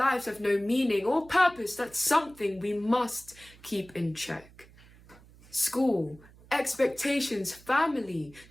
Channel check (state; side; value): noise; right; hum, 24 dB below the sound